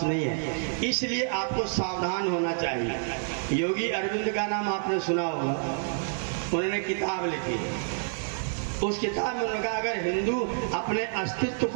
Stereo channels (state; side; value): silent; left; 56 dB below the other